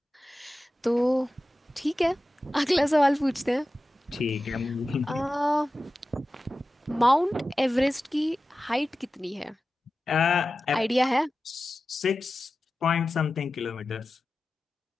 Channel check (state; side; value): normal; both; correlation 0.94